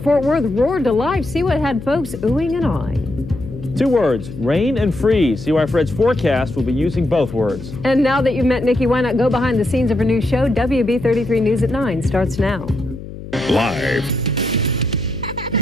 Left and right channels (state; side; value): noise; left; hum, 12 dB below the sound